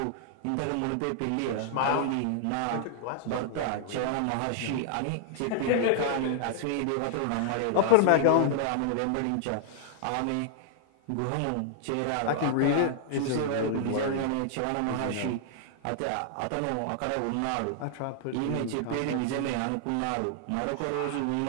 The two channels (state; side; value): different; both; correlation 0.00